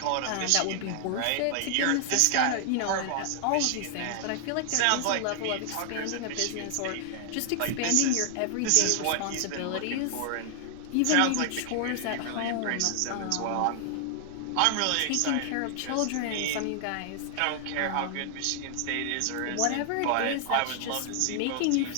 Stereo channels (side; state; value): both; different; correlation 0.00